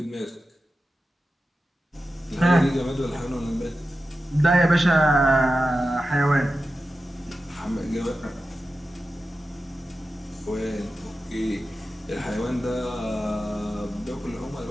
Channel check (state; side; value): normal; both; correlation 0.92